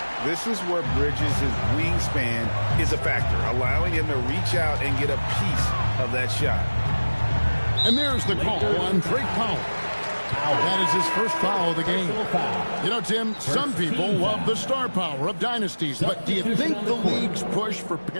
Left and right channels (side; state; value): both; inverted; correlation -1.00